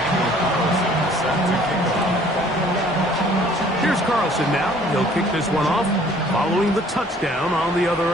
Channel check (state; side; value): normal; both; correlation 0.56